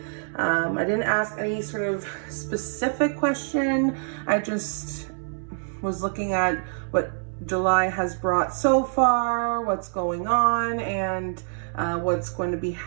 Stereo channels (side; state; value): left; silent; 61 dB below the other